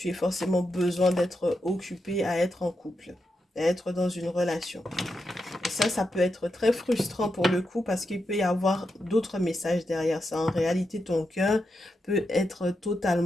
aies forcément besoin d'être occupé à être en couple, à être dans une relation. Et ça peut être très frustrant pour le coup parce qu'il peut y avoir d'autres messages derrière ça. En réalité, ton cœur peut être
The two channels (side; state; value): both; normal; correlation 0.86